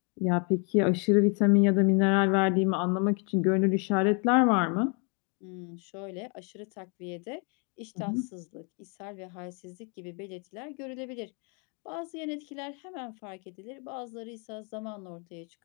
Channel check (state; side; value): quieter; right; 36.4 dB